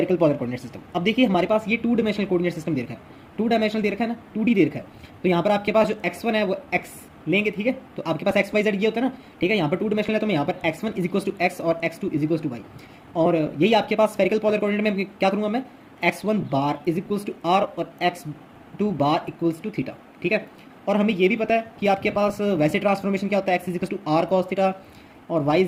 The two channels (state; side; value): identical; both; correlation 1.00